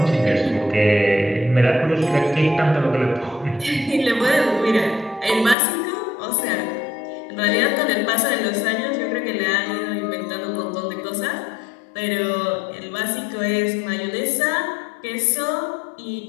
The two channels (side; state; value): right; drops out; at 5.6 s